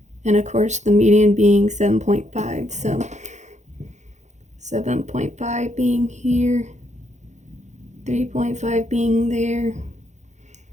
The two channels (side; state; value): left; late; 0.34 ms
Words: And of course, the median being 7.5. So 7.5 being here, 3.5 being there,